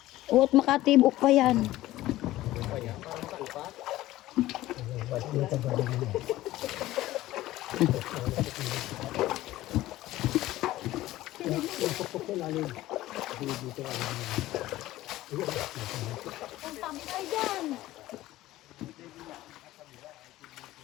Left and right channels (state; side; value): quieter; right; 16.0 dB